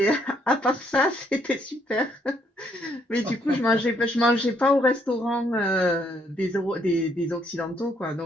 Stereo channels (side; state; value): both; normal; correlation 0.70